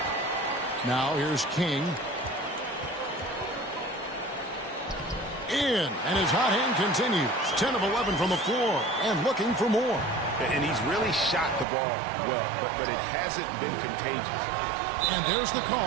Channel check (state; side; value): drops out; left; at 11.7 s